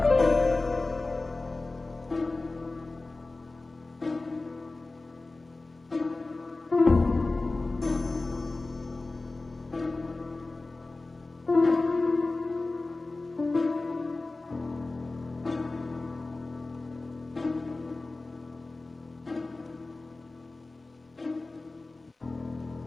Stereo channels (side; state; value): right; quieter; 3.3 dB